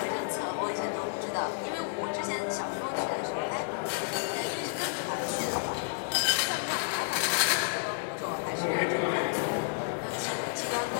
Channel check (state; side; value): silent; right; digital silence